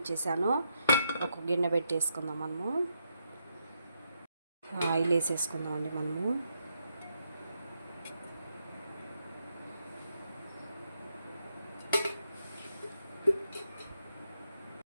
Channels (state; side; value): inverted; both; correlation -0.80